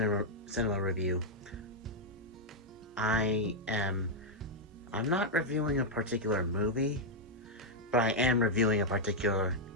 cinema review, I'm not reviewing a particular movie, but I am reviewing a particular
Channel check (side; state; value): both; normal; correlation -0.03